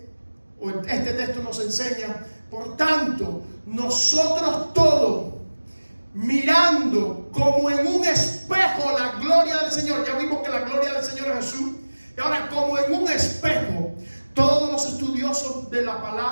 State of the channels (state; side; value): inverted; both; correlation -1.00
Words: o este texto nos enseña: por tanto, nosotros todos, mirando como en un espejo la gloria del Señor. Ya vimos que la gloria del Señor es Jesús. Y ahora, como en un espejo, todos los estudiosos de la